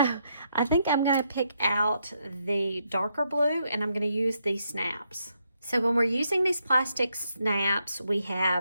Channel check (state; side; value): inverted; both; correlation -0.77